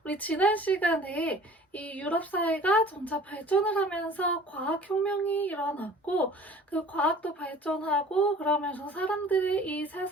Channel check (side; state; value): both; normal; correlation 0.47